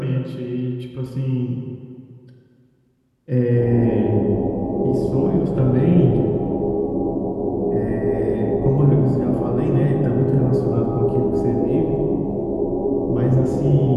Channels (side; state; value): both; identical; correlation 1.00